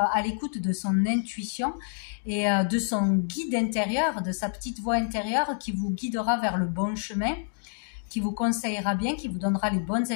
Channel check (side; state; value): right; silent; digital silence